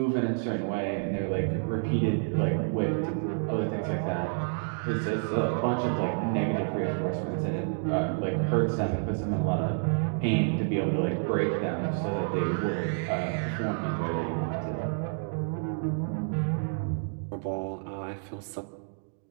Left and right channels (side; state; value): left; silent; 57 dB below the other